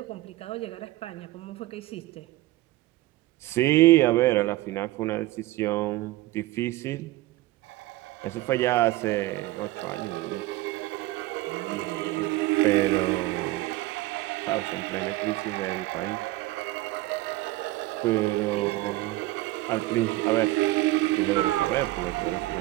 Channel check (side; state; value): left; quieter; 17.8 dB